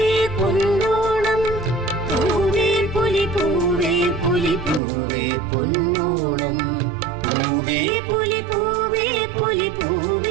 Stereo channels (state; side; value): drops out; left; at 4.8 s